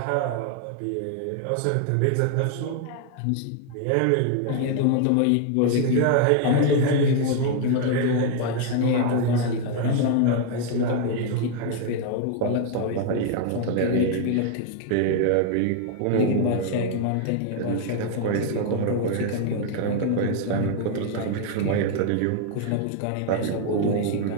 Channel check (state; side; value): different; both; correlation 0.00